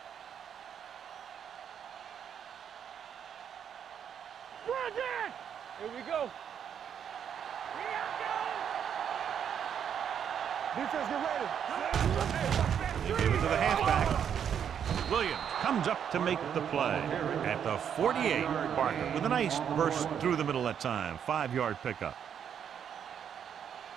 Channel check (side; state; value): left; quieter; 8.4 dB